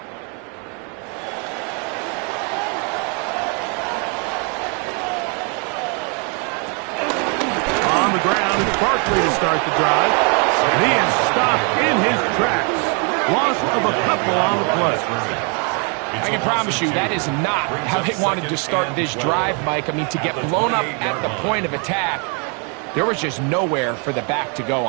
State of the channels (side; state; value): left; quieter; 35.9 dB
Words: Barkley to start the drive, and he is stopped in his tracks. Loss of a couple on the play. I can promise you that is not how they wanted to start this drive, Mike. I mean, to get blown up at the point of attack, there was just nowhere for the back to go